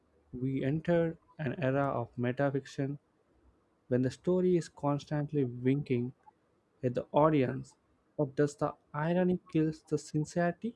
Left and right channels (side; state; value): both; identical; correlation 1.00